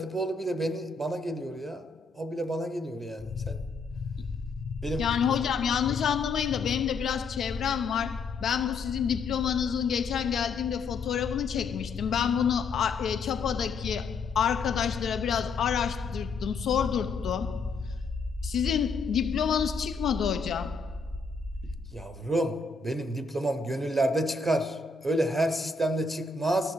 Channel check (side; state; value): right; quieter; 4.3 dB